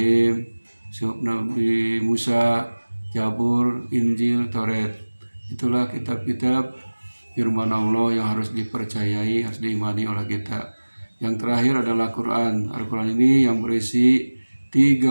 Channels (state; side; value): inverted; both; correlation -1.00